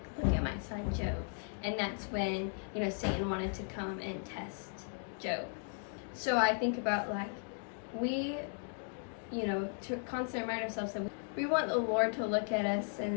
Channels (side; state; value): right; silent; 54 dB below the other